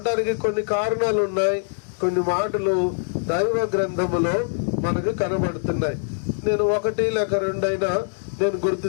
కొన్ని కారణాలు ఉన్నాయి. కొన్ని మాటలు దైవ గ్రంథములో మనకు కనబడుతున్నాయి. నేను ఒకటి లేక రెండైనా నేను గుర్తు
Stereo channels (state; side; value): silent; right; digital silence